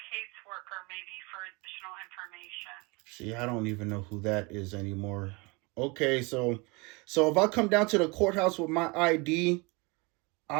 caseworker maybe for additional information. See, I don't even know who that is anymore. Okay, so if I come down to the courthouse with my ID,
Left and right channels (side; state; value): left; quieter; 27.5 dB